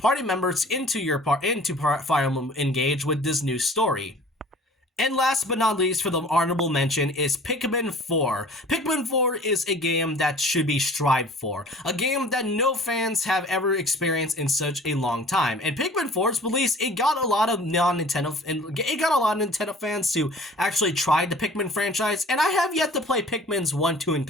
members into Fire Emblem Engage with this new story. And last but not least, for the honorable mention, is Pikmin 4. Pikmin 4 is a game that should be strived for. A game that no fans have ever experienced in such a long time. And Pikmin 4's release, it got a lot of Nintendo fans to actually try the Pikmin franchise. And I have yet to play Pikmin's 1, 2, and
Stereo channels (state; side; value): normal; both; correlation 0.47